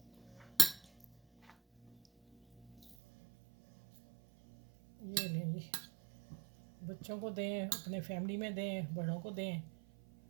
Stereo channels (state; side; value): drops out; left; at 3.0 s